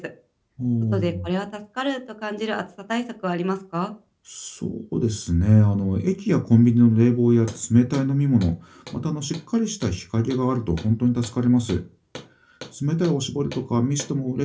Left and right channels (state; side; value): identical; both; correlation 1.00